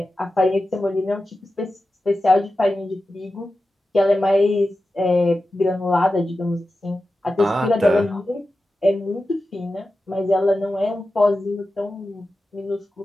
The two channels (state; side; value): normal; both; correlation 0.93